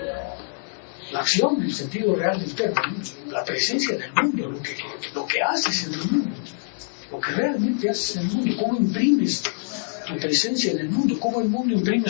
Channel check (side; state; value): right; silent; 61 dB below the other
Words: La acción, en el sentido real del término, la presencia del mundo, lo que haces en el mundo. lo que realmente haces en el mundo, cómo imprimes tu presencia en el mundo, cómo el mundo imprime